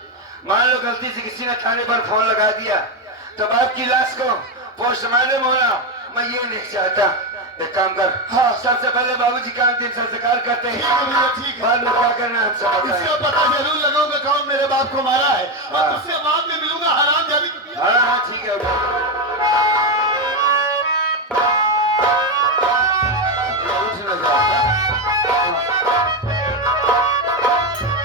मान लो गलती से किसी ने थाने पर फोन लगा दिया तो बाप की लाश को पोस्टमार्टम होना मैं ये नहीं चाहता, एक काम कर, हाँ। सबसे पहले बाबूजी का अंतिम संस्कार करते ठीक हैं, है भैया, ठीक है। बाद में क्या करना है हमसे बताएं। इसका पता जरूर लगाऊंगा कौन मेरे बाप को मारा है और हाँ। उससे बाद में मिलूंगा हराम जाबी। हाँ हाँ ठीक है उठ ना जाओ, हाँ?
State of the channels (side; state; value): both; normal; correlation 0.10